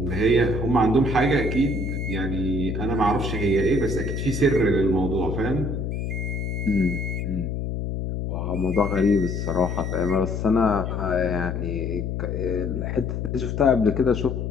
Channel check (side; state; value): left; noise; hum, 3 dB below the sound